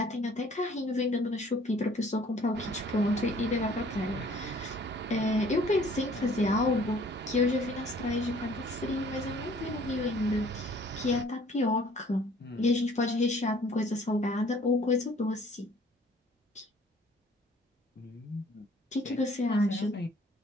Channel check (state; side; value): normal; both; correlation 0.56